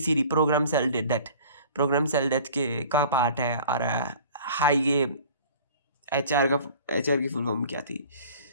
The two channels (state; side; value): inverted; both; correlation -0.46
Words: programme cell death, programme cell death के का पार्ट है। और हाई ये HR की फुल फॉर्म क्या थी,